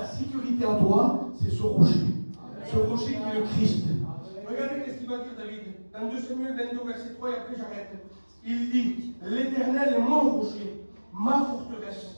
sécurité à toi, c'est ce rocher. Ce rocher qui est le Christ. Regardez qu'est-ce qu'il va dire David. Dans 2 Samuel 22, verset 3, et après j'arrête. Il dit, l'Éternel est mon rocher, ma forteresse.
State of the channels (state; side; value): inverted; both; correlation -1.00